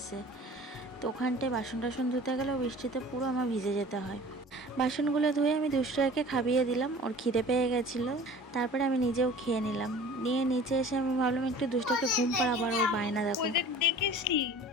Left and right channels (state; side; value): normal; both; correlation 0.44